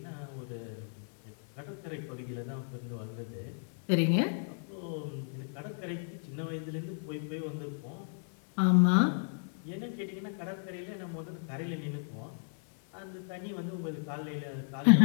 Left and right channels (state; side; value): silent; right; 55 dB below the other